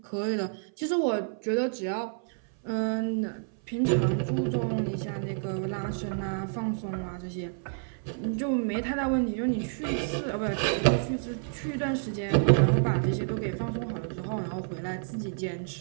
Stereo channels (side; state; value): left; silent; 56 dB below the other